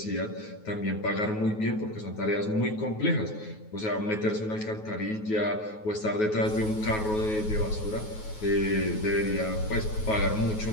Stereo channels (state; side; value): late; right; 9.4 ms